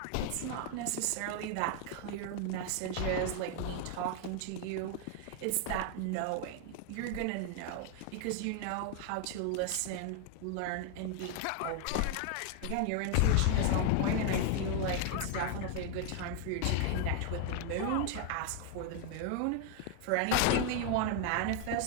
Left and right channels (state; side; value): different; both; correlation 0.00